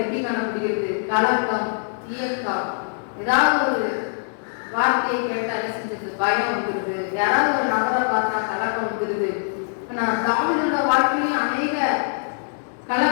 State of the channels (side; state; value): right; silent; 63 dB below the other